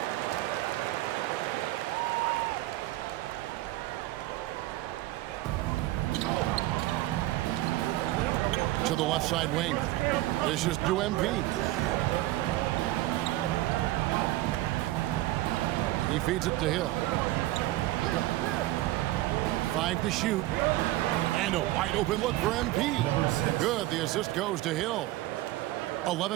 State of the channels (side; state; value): left; quieter; 16.9 dB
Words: To the left side wing. This is to MP. He feeds it to Hill. 5 to shoot. And a wide open look for MP. Good. The assist goes to Hill.